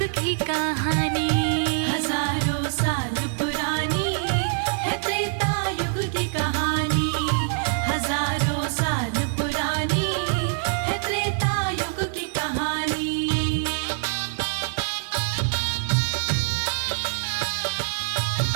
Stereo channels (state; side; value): silent; left; 59 dB below the other